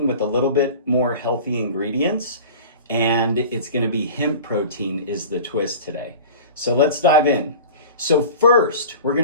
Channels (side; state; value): both; inverted; correlation -0.37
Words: with a little bit more healthy ingredients, and it's going to be hemp protein is the twist today. So let's dive in. So first, we're going